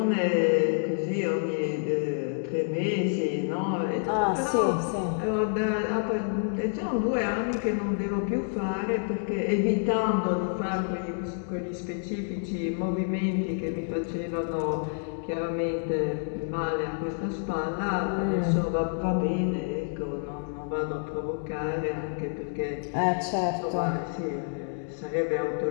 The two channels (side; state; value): right; silent; digital silence